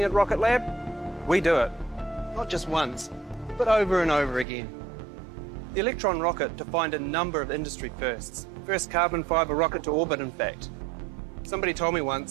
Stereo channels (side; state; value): left; drops out; at 4.5 s